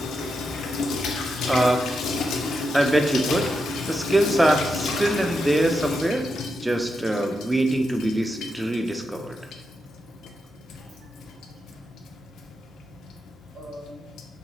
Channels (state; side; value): normal; both; correlation 0.86